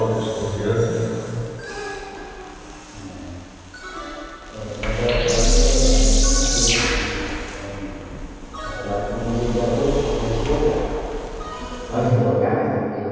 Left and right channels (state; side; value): identical; both; correlation 1.00